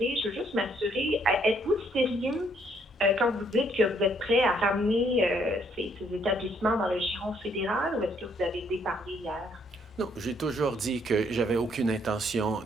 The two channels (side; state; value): both; normal; correlation 0.68